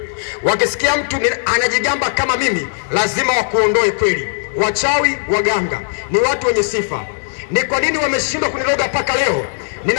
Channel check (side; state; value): right; silent; digital silence